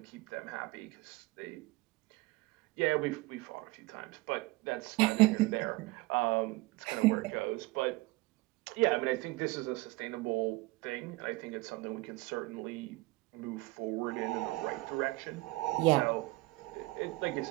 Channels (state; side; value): quieter; left; 21.1 dB